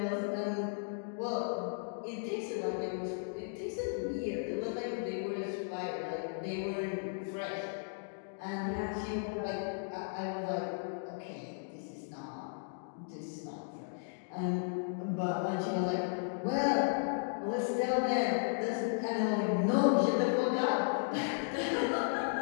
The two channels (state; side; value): silent; right; digital silence